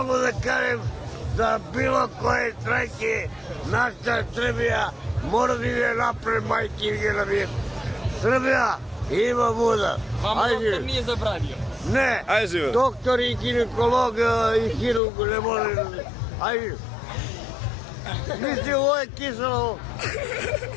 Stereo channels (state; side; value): drops out; right; at 15.0 s